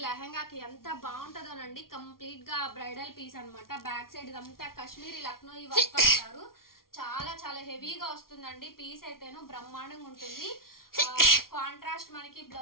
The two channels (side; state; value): right; late; 0.93 ms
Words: లెహంగాకి ఎంత బాగుంటుందోనండి. కంప్లీట్ గా బ్రైడల్ పీస్ అనమాట. బ్యాక్ సైడ్ ఇదంతా కాశ్మీరీ లక్నో ఈ వర్క్ అంటారు. చాలా హెవీగా వస్తుందండి. పీస్ అయితేను బ్రహ్మాండంగా ఉంటుంది. కాంట్రాస్ట్ మనకి